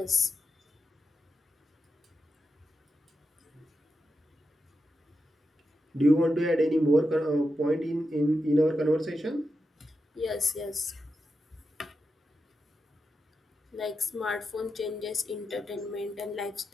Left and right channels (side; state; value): both; normal; correlation 0.88